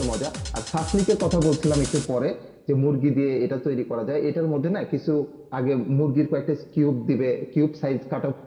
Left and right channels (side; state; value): both; identical; correlation 1.00